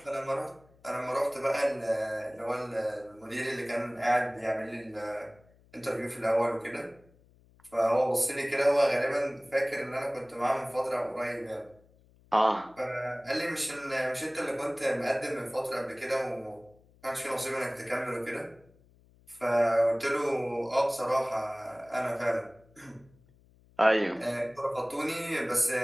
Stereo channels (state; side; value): noise; left; hum, 29 dB below the sound